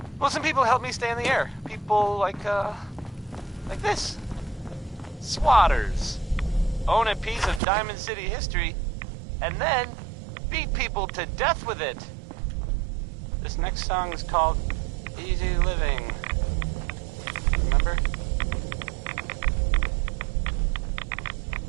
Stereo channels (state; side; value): drops out; left; at 7.6 s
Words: well, some people help me stay in the air. People like this. Swatters. Own a piece of Diamond City history, and then beat people to death with it. This next song is called Easy Living. Remember?